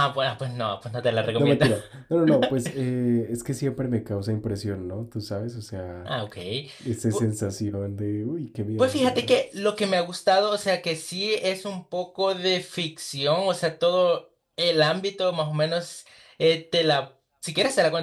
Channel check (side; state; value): both; identical; correlation 1.00